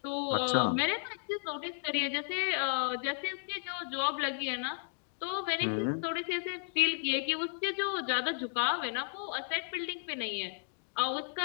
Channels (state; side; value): silent; right; digital silence